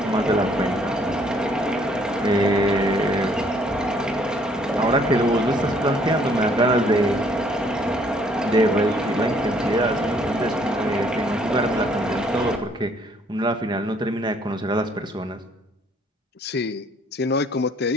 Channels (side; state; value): both; normal; correlation 0.63